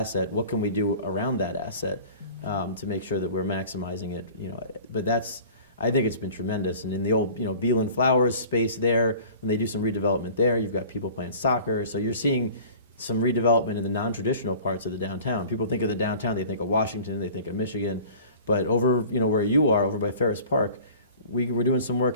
What can we do around that asset to make sure that we're maximizing it? But I think it's been tremendous. And in the old, Beal and Flowers space there, when they do some redevelopment there, you've got people playing soccer. So you're seeing some redevelopment in the non-traditional parts of the downtown. People think of the downtown, they think of Washington, they think of Michigan, but over, where you are, over by Ferris Park, we're doing some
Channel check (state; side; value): inverted; both; correlation -0.45